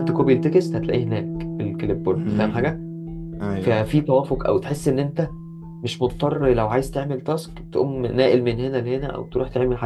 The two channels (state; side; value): identical; both; correlation 1.00